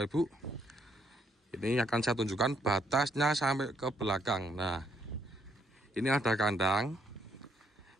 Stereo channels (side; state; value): both; normal; correlation 0.71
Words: Ibu. Ini akan saya tunjukkan batasnya sampai ke belakang. Nah, ini ada kandang,